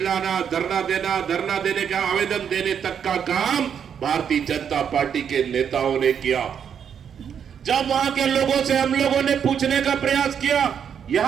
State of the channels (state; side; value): quieter; left; 7.9 dB